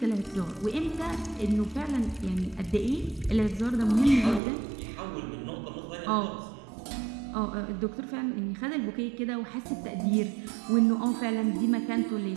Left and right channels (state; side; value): drops out; left; at 4.4 s